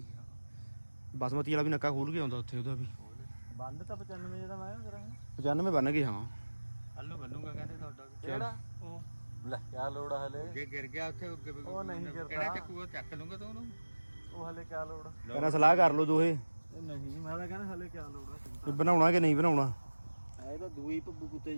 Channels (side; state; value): both; inverted; correlation -1.00